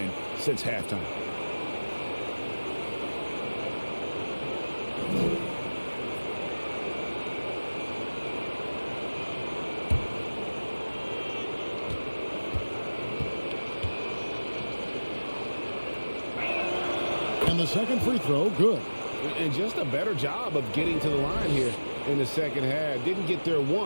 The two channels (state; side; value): inverted; both; correlation -1.00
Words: since halftime. And the second free throw, good. And just a better job of getting to the line here in the second half. Didn't get there